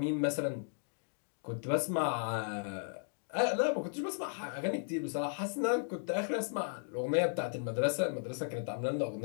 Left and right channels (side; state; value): right; silent; digital silence